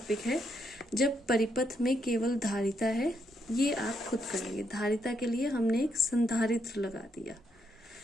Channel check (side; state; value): both; normal; correlation 0.77